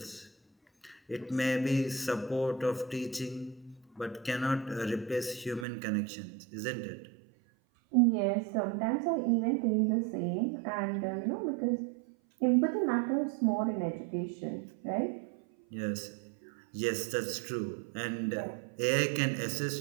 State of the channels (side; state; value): left; drops out; at 5.7 s